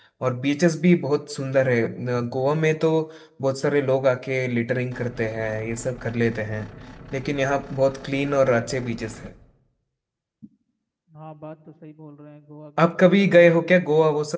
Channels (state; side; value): identical; both; correlation 1.00